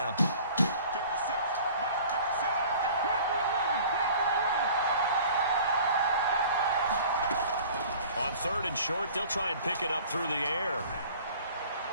On 3rd and short, they'll try and pick it up through the air.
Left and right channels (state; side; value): inverted; both; correlation -0.47